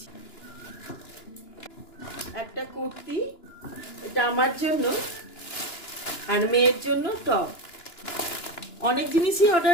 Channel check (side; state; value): right; late; 2.9 ms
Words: একটা কুর্তি, এটা আমার জন্য, আর মেয়ের জন্য টপ। অনেক জিনিসই